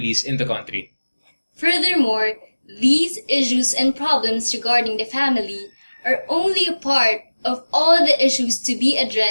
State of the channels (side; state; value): both; inverted; correlation -1.00